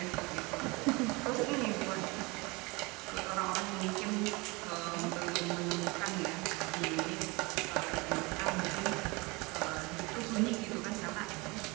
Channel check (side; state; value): left; quieter; 25.7 dB